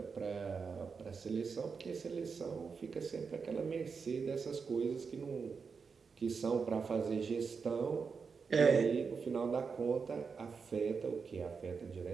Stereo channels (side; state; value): left; quieter; 5.4 dB